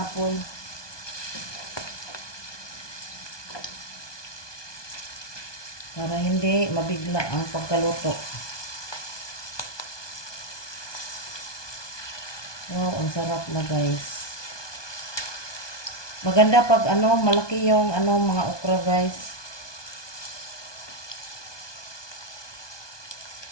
Para hindi mabigla ang pagkaluto. Wow, ang sarap na guys. Maganda pag malaki yung mga okra guys.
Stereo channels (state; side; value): late; right; 1.2 ms